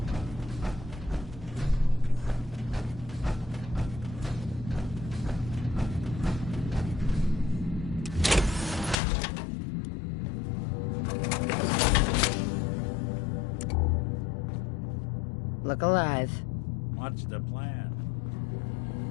Look alive. What's the plan?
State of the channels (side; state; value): right; drops out; at 9.0 s